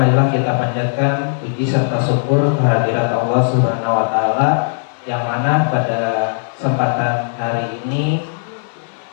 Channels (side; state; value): right; silent; 68 dB below the other